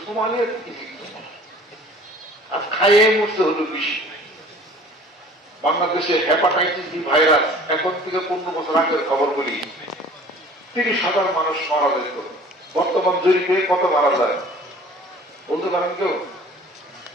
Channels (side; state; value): both; normal; correlation 0.48